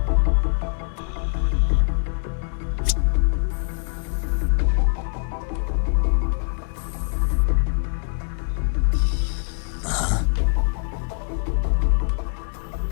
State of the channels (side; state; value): right; silent; 63 dB below the other